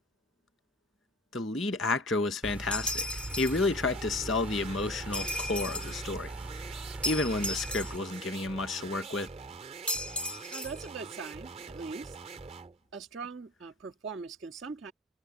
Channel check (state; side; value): normal; both; correlation 0.40